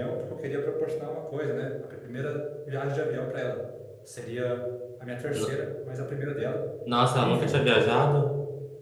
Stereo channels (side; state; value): both; identical; correlation 1.00